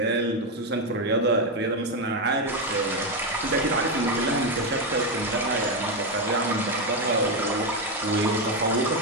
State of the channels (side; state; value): both; normal; correlation 0.08